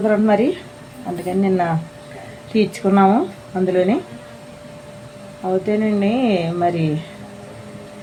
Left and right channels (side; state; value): both; identical; correlation 1.00